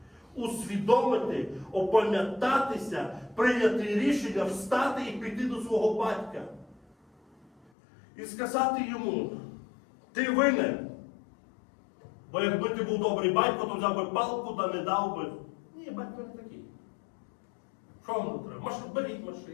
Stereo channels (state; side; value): drops out; right; at 7.7 s